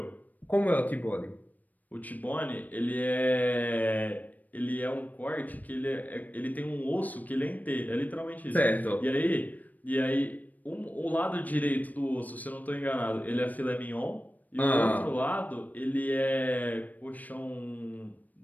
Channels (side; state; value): right; late; 0.080 ms